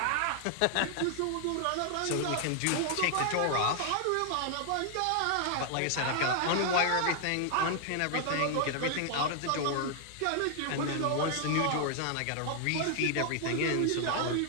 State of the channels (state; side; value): different; both; correlation 0.00